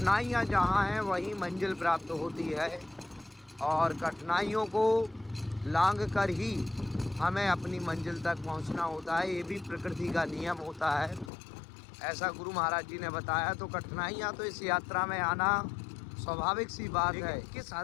जहाँ हैं वहीं मंजिल प्राप्त होती है, और कठिनाइयों को लांघ कर ही हमें अपनी मंजिल तक पहुँचना होता है। ये भी प्रकृति का नियम होता है, ऐसा गुरु महाराज जी ने बताया। तो कठिनाइयाँ तो इस यात्रा में आना स्वाभाविक सी बात है। किस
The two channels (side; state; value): right; drops out; at 11.3 s